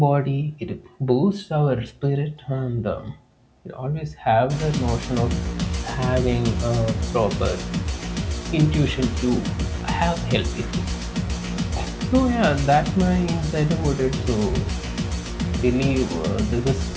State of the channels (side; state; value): both; identical; correlation 1.00